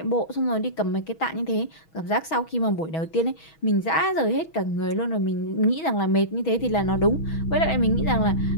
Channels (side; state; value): right; late; 6.2 ms